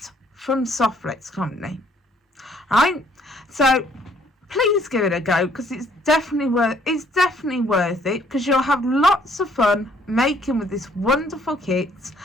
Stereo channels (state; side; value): normal; both; correlation 0.64